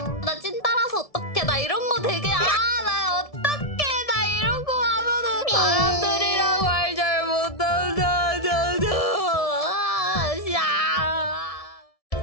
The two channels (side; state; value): right; late; 1.7 ms